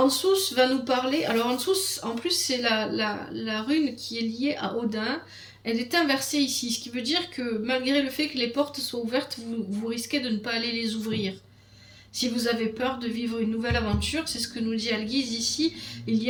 va nous parler. Alors, Ansus, en plus, c'est la rune qui est liée à Odin. Elle est inversée ici, ce qui veut dire que malgré le fait que les portes soient ouvertes, vous risquez de ne pas aller les ouvrir. Si vous avez peur de vivre une nouvelle aventure, c'est ce que nous dit Algiz ici, il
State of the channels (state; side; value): identical; both; correlation 1.00